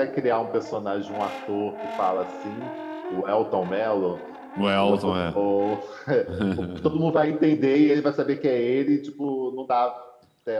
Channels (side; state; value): both; identical; correlation 1.00